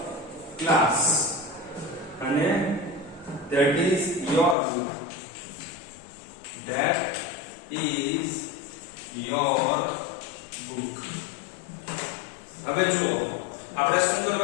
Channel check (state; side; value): drops out; right; at 4.5 s